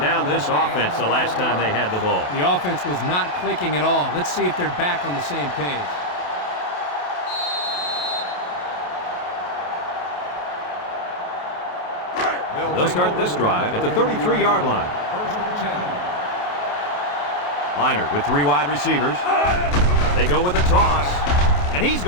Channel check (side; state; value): right; late; 28 ms